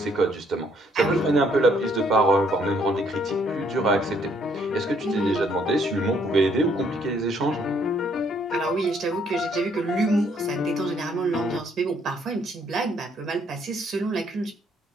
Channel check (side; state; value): both; normal; correlation 0.67